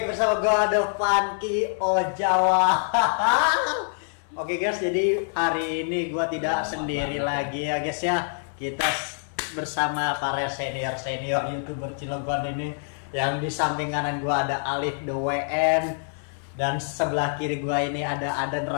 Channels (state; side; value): silent; right; 57 dB below the other